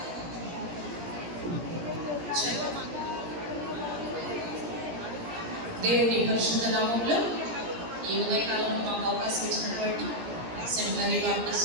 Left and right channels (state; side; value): late; left; 17 ms